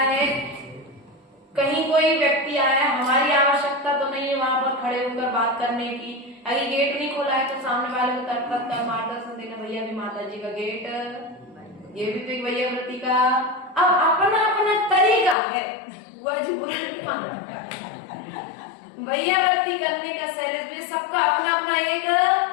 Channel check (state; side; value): drops out; right; at 15.4 s